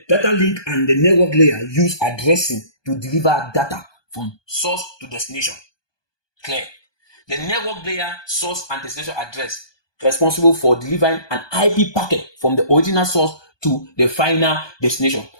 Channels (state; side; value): late; right; 1.2 ms